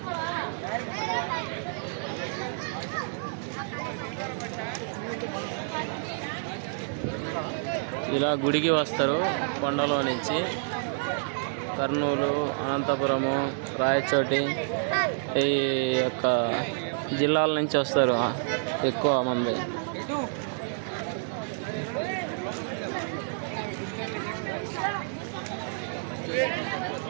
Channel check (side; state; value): left; silent; 59 dB below the other